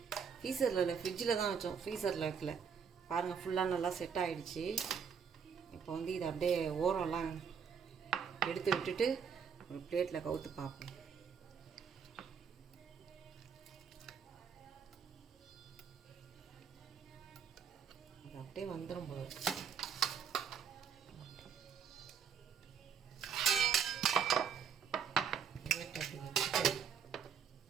ஃப்ரீசரில் இல்லை, ஃப்ரிட்ஜில் தான் வச்சோம், ஃப்ரீசரில் வைக்கல. பாருங்கள், ஃபுல்லாக நல்லா செட் ஆகிடுச்சு. இப்போ இதை அப்படியே ஓரம்லாம் எடுத்து விட்டுட்டு ஒரு பிளேட்டில் கவுத்து பார்ப்போம். அது அப்படியே வந்துடும் போது.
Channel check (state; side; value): quieter; left; 6.8 dB